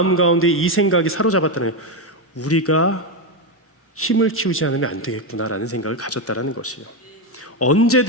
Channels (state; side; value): normal; both; correlation 0.09